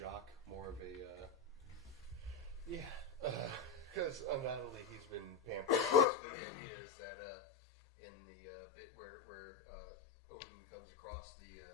more of a because undoubtedly he's been pampered. Basically, the idea is that in the bit where Odin comes across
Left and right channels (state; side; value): drops out; right; at 6.1 s